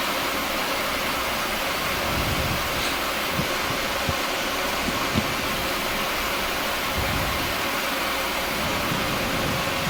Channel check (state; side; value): identical; both; correlation 1.00